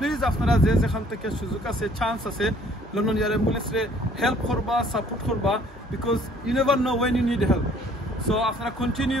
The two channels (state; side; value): normal; both; correlation 0.58